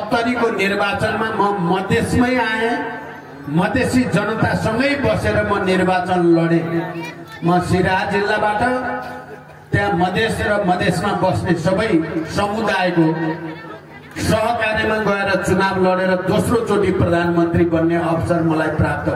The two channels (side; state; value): both; identical; correlation 1.00